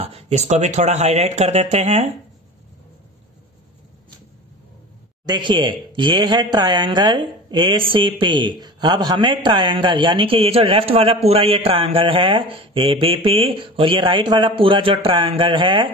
इसको भी थोड़ा हाईलाइट कर देते हैं। देखिए ये है ट्रायंगल ACP। अब हमें ट्रायंगल यानी कि ये जो लेफ्ट वाला पूरा ये ट्रायंगल है ABP और ये राइट वाला पूरा जो ट्रायंगल है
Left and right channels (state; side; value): normal; both; correlation 0.35